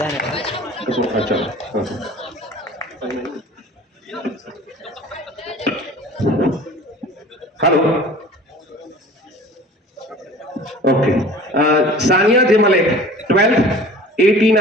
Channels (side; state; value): both; normal; correlation 0.43